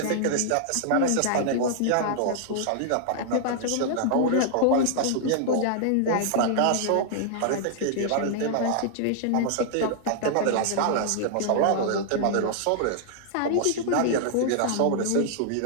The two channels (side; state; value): both; different; correlation -0.01